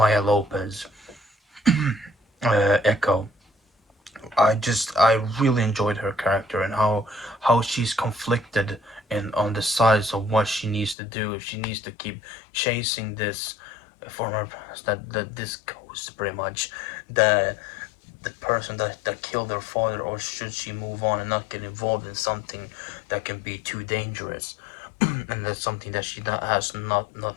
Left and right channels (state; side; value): drops out; right; at 11.0 s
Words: Lopez, Echo. I really enjoyed her character and how she's conflicted and on the sides of what she needs to do. If she needs to keep chasing this former that this ghost, pretty much the the person that killed her father, or should she move on and not get involved in something that can be too dangerous, and that's something that she has not